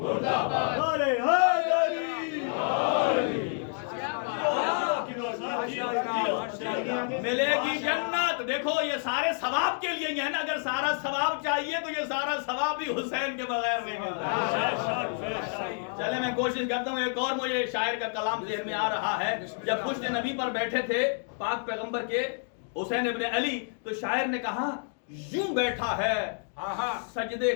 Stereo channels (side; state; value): right; silent; 59 dB below the other